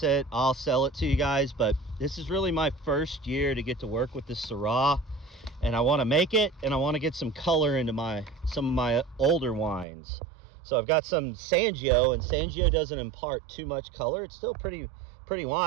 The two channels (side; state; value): left; drops out; at 9.9 s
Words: it, I'll sell it to you guys, but this is really my first year to get to work with this Syrah, and I want to make it, and I want to get some color into some of my older wines. So I've got some Sangio, and Sangio doesn't impart too much color. It's still pretty